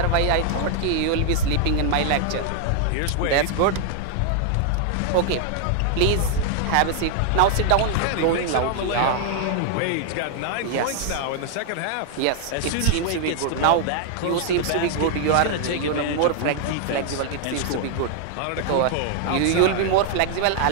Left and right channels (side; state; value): both; different; correlation 0.00